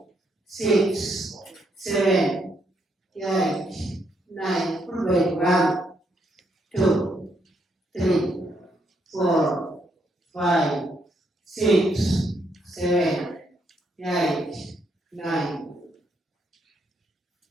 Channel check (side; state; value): both; normal; correlation 0.75